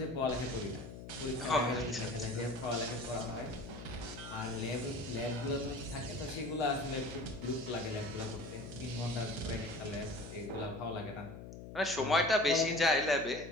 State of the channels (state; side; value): noise; left; hum, 12 dB below the sound